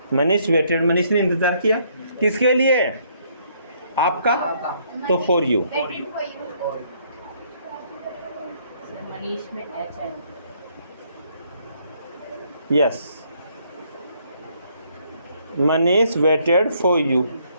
Manish waited, Manish ने इंतजार किया किसके लिए? आपका, तो for you. Waiting for you. Manish में एच है। Yes, Manish waited for you,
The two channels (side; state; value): both; inverted; correlation -0.68